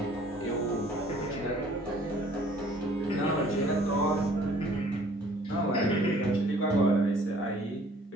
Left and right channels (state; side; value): normal; both; correlation 0.56